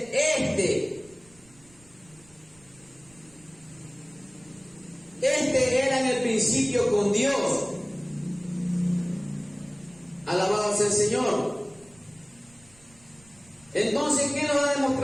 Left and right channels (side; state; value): right; noise; rumble, 28 dB below the sound